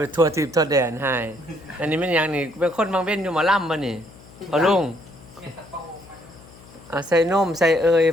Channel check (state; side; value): noise; left; hum, 22 dB below the sound